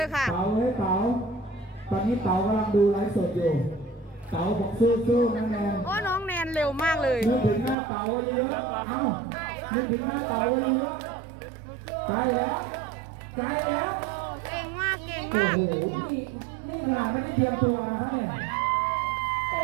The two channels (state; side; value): drops out; left; at 7.8 s